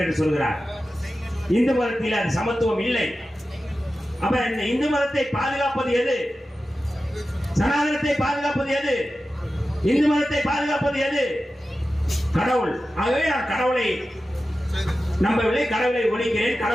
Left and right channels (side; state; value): both; normal; correlation 0.93